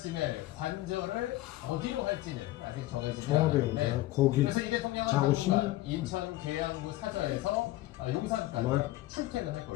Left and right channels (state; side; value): quieter; right; 16.9 dB